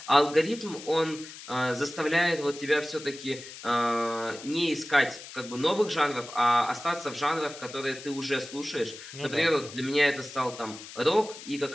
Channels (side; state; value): left; noise; hiss, 14 dB below the sound